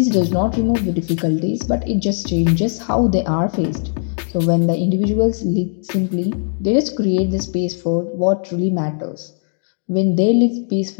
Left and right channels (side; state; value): right; silent; digital silence